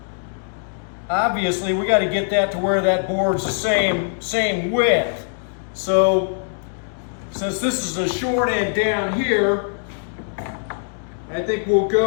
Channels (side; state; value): right; silent; digital silence